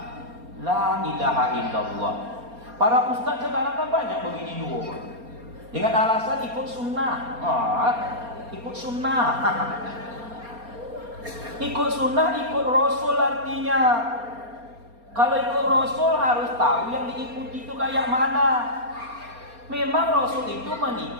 La ilaha illallah. Para ustaz sekarang kan banyak begini 2. Dengan alasan ikut sunnah. Ikut sunnah. Ikut sunnah, ikut Rasul artinya. Kalau ikut Rasul harus tahu yang diikuti itu kayak mana. Memang Rasul itu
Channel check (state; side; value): late; left; 4.3 ms